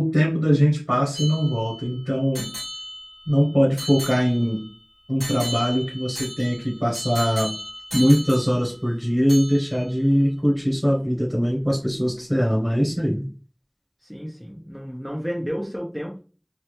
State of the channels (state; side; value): identical; both; correlation 1.00